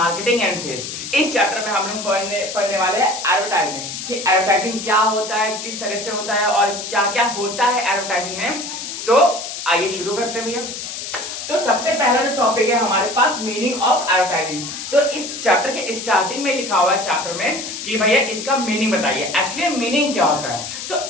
एंड सेल्स। इस चैप्टर में हम लोग पढ़ने वाले हैं एडवर्टाइजिंग कि एडवर्टाइजिंग क्या होता है, किस तरह से होता है और क्या क्या होता है एडवर्टाइजिंग में। तो आइए शुरू करते हैं भैया। तो सबसे पहला जो टॉपिक है हमारे पास मीनिंग ऑफ एडवर्टाइजिंग। तो इस चैप्टर के स्टार्टिंग में लिखा हुआ है चैप्टर में कि भैया इसका मीनिंग बताइए, एक्चुअली मीनिंग क्या होता है। तो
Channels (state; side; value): noise; left; hiss, 7 dB below the sound